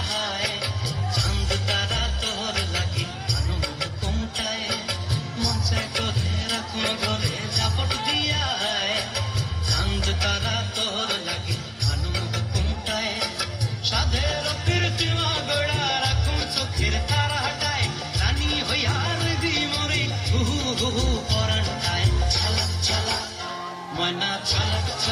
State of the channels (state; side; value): identical; both; correlation 1.00